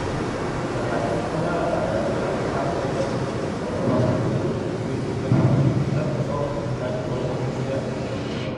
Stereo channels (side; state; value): both; identical; correlation 1.00